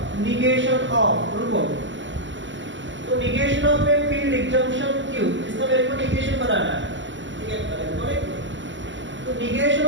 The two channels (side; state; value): left; late; 0.54 ms